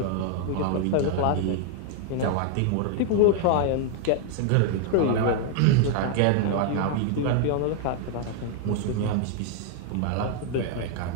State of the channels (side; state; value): both; different; correlation 0.00